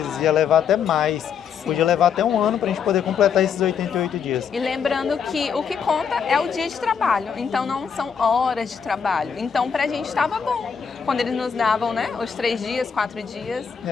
ia levar até mais. Podia levar até 1 ano para a gente poder completar esses 88 dias. E lembrando que o que conta é o dia de trabalho, então não são horas de trabalho. Então pra gente estava bom quando eles nos davam, né, os 3 dias, 4 dias,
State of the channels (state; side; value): quieter; right; 6.9 dB